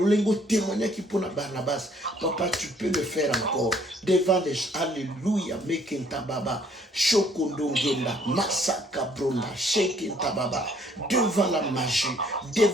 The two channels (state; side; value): normal; both; correlation 0.62